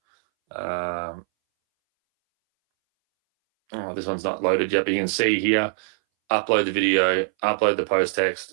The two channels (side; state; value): left; silent; 62 dB below the other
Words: Oh, this one's not loaded yet, but you can see here, upload the video, upload the post